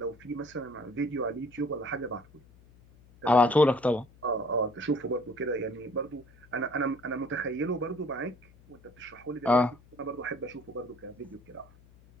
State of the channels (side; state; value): left; noise; hum, 25 dB below the sound